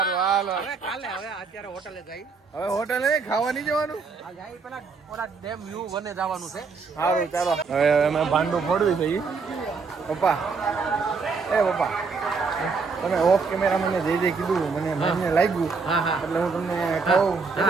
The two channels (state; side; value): quieter; left; 4.8 dB